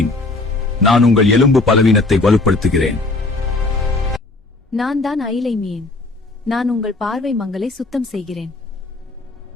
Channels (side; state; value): right; quieter; 3.2 dB